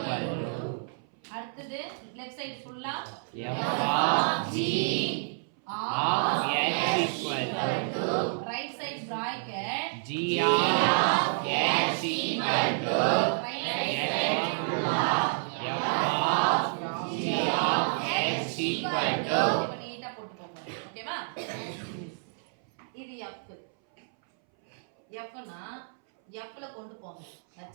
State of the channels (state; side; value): silent; left; 58 dB below the other